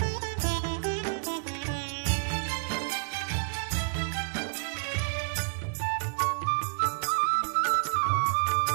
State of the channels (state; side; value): silent; left; digital silence